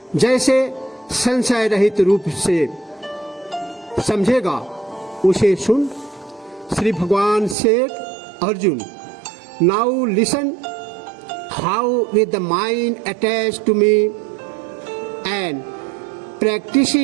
जैसे संशय रहित रूप से समझेगा उसे सुन। श्री भगवान से Arjun, now listen how with the mind attach to me and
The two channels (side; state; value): left; drops out; at 7.6 s